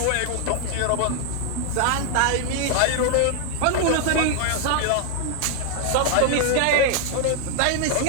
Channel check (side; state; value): both; different; correlation 0.00